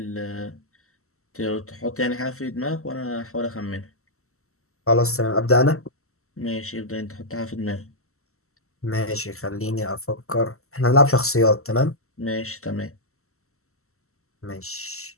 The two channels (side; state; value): right; late; 0.63 ms